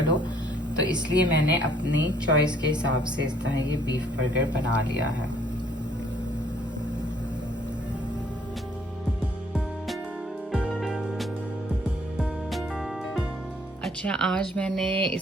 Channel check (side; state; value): both; normal; correlation 0.63